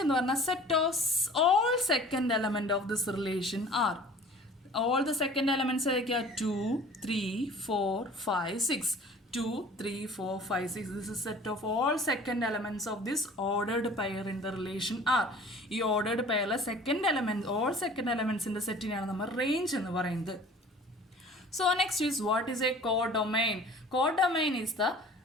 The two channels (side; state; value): both; normal; correlation 0.46